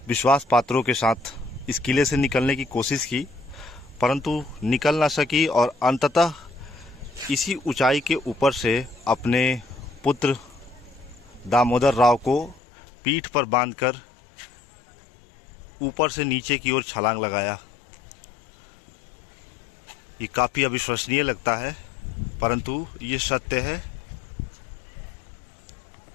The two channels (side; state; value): right; drops out; at 12.6 s